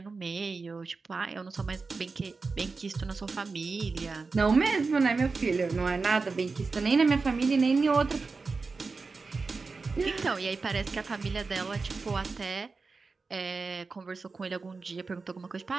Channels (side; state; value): left; quieter; 4.3 dB